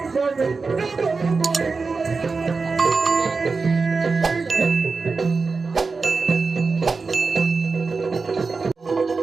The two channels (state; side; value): quieter; left; 4.4 dB